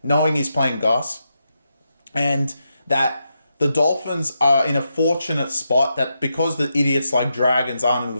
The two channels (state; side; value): inverted; both; correlation -0.85